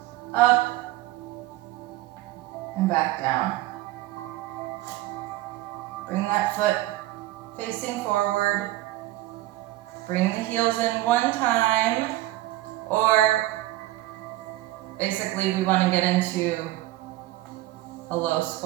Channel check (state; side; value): quieter; left; 16.6 dB